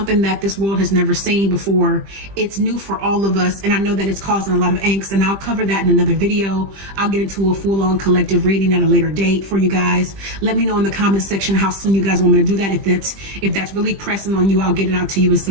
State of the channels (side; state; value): left; late; 20 ms